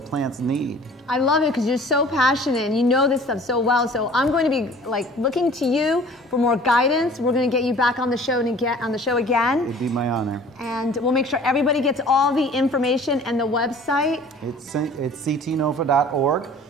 need. I love it because you're so passionate and you know this stuff so well. So I'm going to be like looking to you for more guidance. We're going to get you back on the show and get on the show again. It'd be my honor. And we'll make sure everybody gets all the information and the website. It's CTNOFA.org.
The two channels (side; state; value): both; normal; correlation 0.48